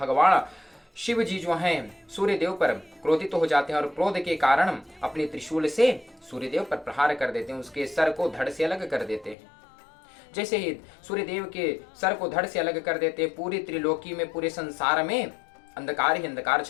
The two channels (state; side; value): drops out; right; at 9.3 s